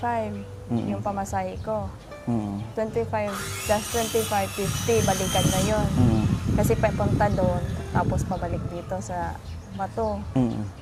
yung pamasahe ko. 25 plus 25, 50, balikan na yon. Kasi papunta doon, tapos pabalik dito sa Bato.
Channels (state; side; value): identical; both; correlation 1.00